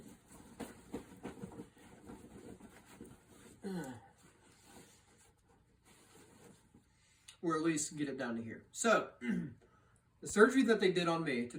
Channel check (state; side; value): identical; both; correlation 1.00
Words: Or at least get it down to here. So, the surgery that they did on me to